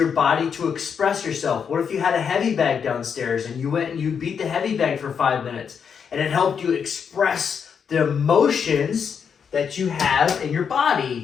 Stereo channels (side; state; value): right; quieter; 6.9 dB